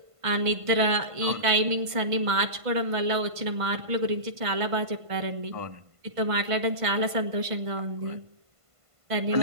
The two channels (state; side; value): late; left; 1.5 ms